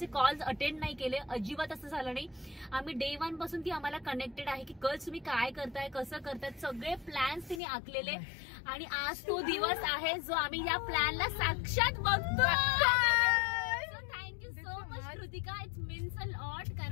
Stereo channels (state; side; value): drops out; right; at 7.6 s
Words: कॉल्स अटेंड नाही केले, अजिबात असं झालं नाही. आम्ही डे 1 पासून ती आम्हाला कनेक्टेड आहे की कल तुम्ही काय करताय, कसं करताय, सगळे प्लॅन्स तिने आखलेले. आणि आज तो दिवस आहे जो आम्ही या प्लॅनला साक्षात बघतो. Kritika, it's means a lot,